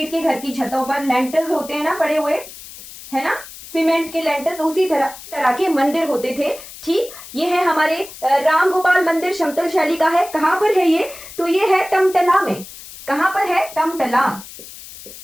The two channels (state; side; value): noise; left; hiss, 16 dB below the sound